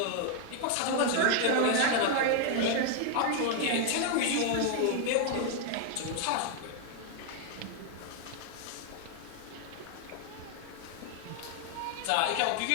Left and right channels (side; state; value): both; different; correlation 0.00